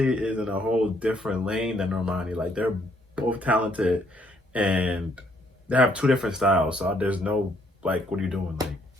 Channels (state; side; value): normal; both; correlation 0.69